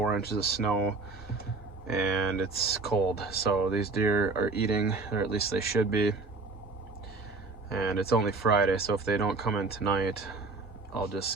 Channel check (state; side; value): quieter; left; 3.8 dB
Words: inches of snow, and it's cold. So these deer are eating, or at least they should be. And it's only Friday, so if they don't come in tonight, I'll